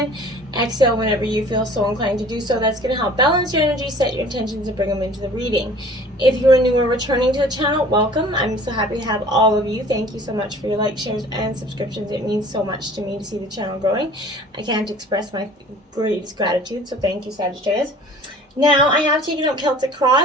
Exhale whenever you feel so inclined to do so. That's going to help balance your energy, set your intentions, and bring them into the reading. If you're new or returning to the channel, welcome. I'm so happy to have all of you. Thank you so much for your likes, shares, and subscriptions. It means so much to me to see the channel growing. I can't express my greatest gratitude, so thank you, Sagittarius. Now, I have taken up Celtic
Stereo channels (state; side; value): normal; both; correlation 0.48